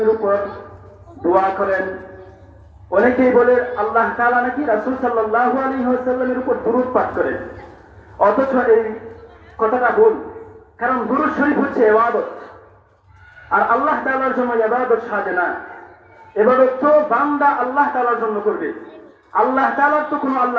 উপর দোয়া করেন। অনেকেই বলে আল্লাহ তাআলা নাকি রাসূল সাল্লাল্লাহু আলাইহি ওয়াসাল্লামের উপর দুরূদ পাঠ করেন, অথচ এই কথাটা ভুল। কারণ দুরূদ শরীফ হচ্ছে ইবাদত, আর আল্লাহ তাআলার জন্য ইবাদত সাজে না। ইবাদত তো বান্দা আল্লাহ তাআলার জন্য করবে। আল্লাহ তাআলার তো কোনো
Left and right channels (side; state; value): both; identical; correlation 1.00